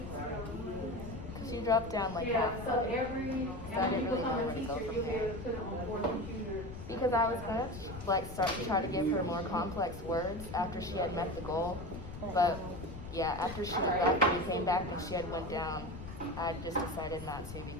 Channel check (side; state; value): left; noise; rumble, 11 dB below the sound